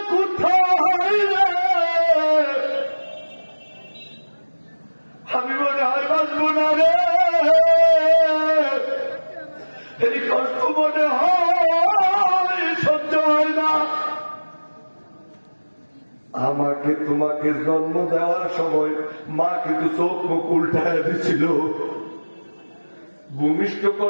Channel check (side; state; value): both; inverted; correlation -1.00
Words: কোথায় রে? আমি মনে হয় বাঁচবো না রে, এই কষ্ট মনে হয় সহ্য হয় না। আমাকে তোমাকে জন্ম দেওয়ার সময় মা কিন্তু চোখ মুখ উল্টায় দিছিল। ভূমিষ্ঠ